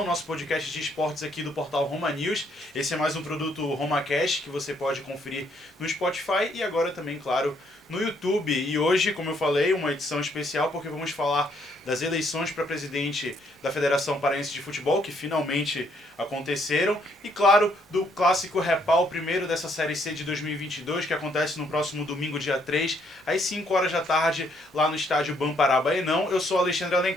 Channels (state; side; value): normal; both; correlation 0.69